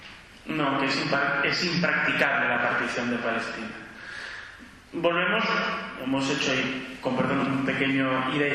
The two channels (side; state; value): both; identical; correlation 1.00